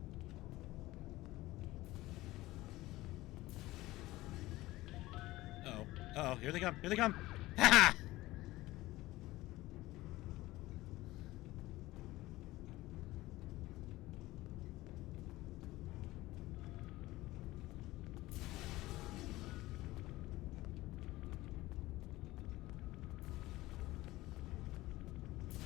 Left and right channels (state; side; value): quieter; right; 18.1 dB